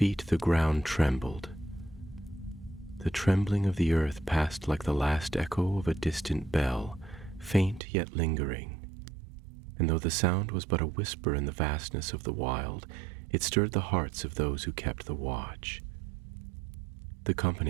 the ground trembled. The trembling of the earth passed like the last echo of a distant bell, faint yet lingering, and though the sound was but a whisper in the vastness of the wild, it stirred the hearts of those who kept the watch. The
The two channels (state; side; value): drops out; left; at 7.8 s